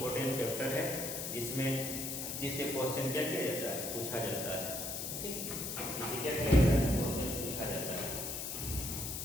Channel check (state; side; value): noise; left; hiss, 4 dB below the sound